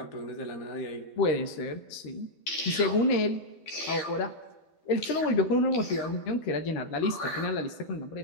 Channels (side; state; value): right; late; 12 ms